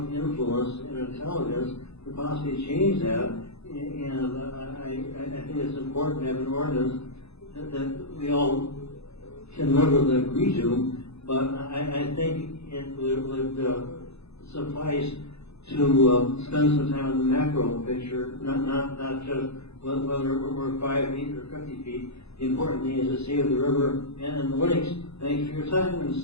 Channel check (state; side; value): late; right; 0.79 ms